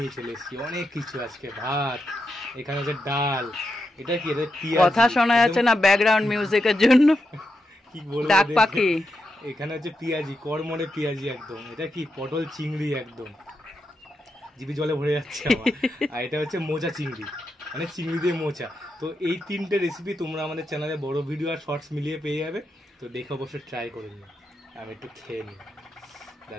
চলে এসেছি, অনেক কিছু। আজকে ভাত, এখানে হচ্ছে ডাল, এটা কি, এটা পেঁয়াজি। কথা শোনা যাচ্ছে না ব্যাকগ্রাউন্ড মিউজিকের জন্য, কি বলবো, ডাক পাখি। এখানে হচ্ছে পেঁয়াজি, কড়মড়ে পেঁয়াজি একদম। এটা কি, পটল চিংড়ি, একদম জিভে জলে ভরে যাচ্ছে আমার। আর এটা হচ্ছে মোচা চিংড়ি, মানে চিংড়ি দিয়ে মোচা। তো এই তিনটে রেসিপি তোমরা আমাদের চ্যানেলে বড় ভিডিও আর শর্টস মিলিয়ে পেয়ে যাবে। তো দেখে অবশ্যই ট্রাই করে নিও। আমি একটু খেয়ে নিই।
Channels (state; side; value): normal; both; correlation 0.86